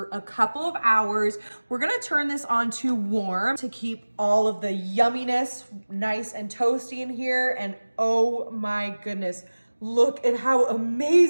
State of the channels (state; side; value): inverted; both; correlation -1.00